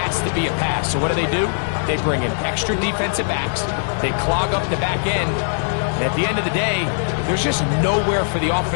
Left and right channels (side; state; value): right; silent; digital silence